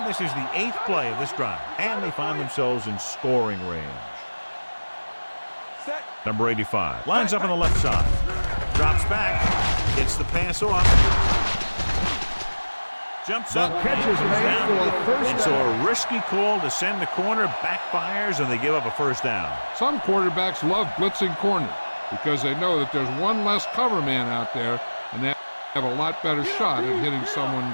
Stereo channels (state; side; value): inverted; both; correlation -1.00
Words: this is the 8th play of this drive. And they find themselves in scoring range. Number 85 lines up on the left side. Drops back. Gets the pass off. Jumps up. Catches made for a first and so a risky call to send the corner backfires, and they give up a first down. Some quarterbacks love blitzing corner because they know that there's one less cover man out there, and they have a lot better shot at hitting someone